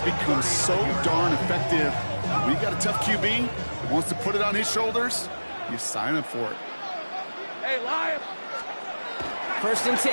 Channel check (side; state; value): both; inverted; correlation -1.00